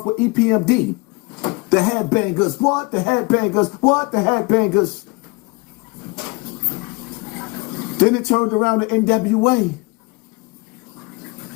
with EPMD. The headbangers, what? The headbangers, what? The headbangers. Then it turned around to NWA.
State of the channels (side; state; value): right; quieter; 25.5 dB